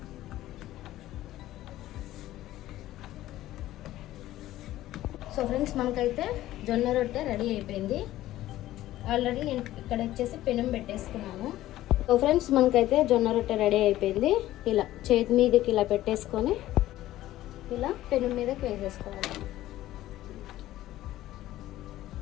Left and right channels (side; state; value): right; quieter; 14.8 dB